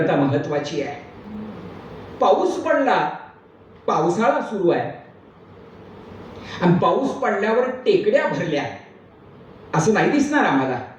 महत्वाची आहे. पाऊस पडला, पावसाळा सुरू आहे, आणि पाऊस पडल्यावर टेकड्या भरल्या असं नाही दिसणार आम्हाला.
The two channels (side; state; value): both; identical; correlation 1.00